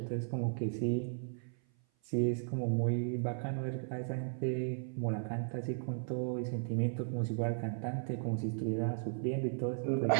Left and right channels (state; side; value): silent; left; 54 dB below the other